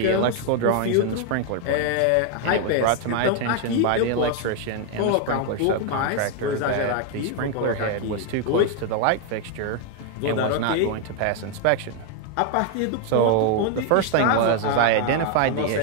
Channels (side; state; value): both; different; correlation 0.01